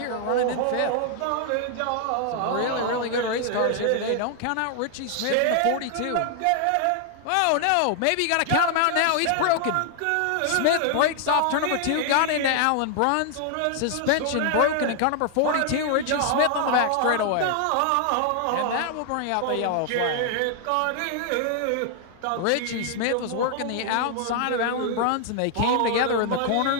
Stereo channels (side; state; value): both; different; correlation 0.00